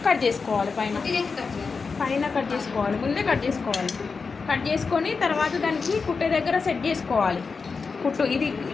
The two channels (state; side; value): quieter; right; 4.8 dB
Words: కట్ చేసుకోవాలి. పైన కట్ చేసుకోవాలి, ముందే కట్ చేసుకోవాలి. కట్ చేసుకొని తర్వాత దానికి కుట్టే దగ్గర సెట్ చేసుకోవాలి. కుట్టు ఇది